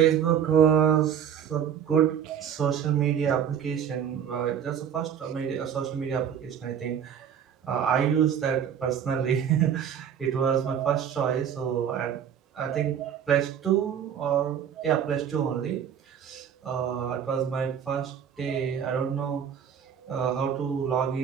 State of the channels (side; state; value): left; quieter; 8.6 dB